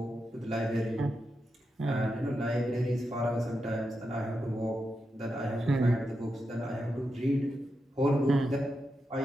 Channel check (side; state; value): both; normal; correlation 0.87